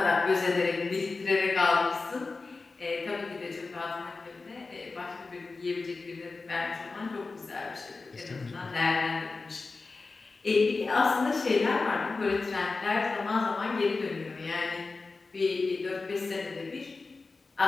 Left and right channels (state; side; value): quieter; right; 3.9 dB